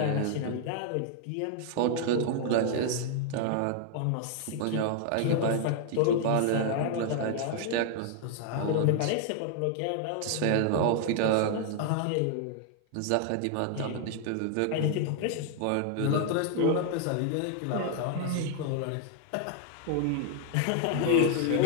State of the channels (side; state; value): both; different; correlation 0.00